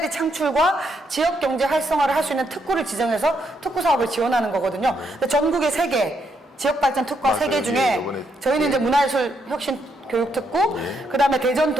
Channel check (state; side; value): normal; both; correlation 0.77